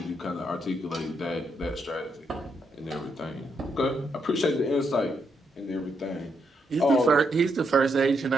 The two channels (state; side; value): normal; both; correlation 0.79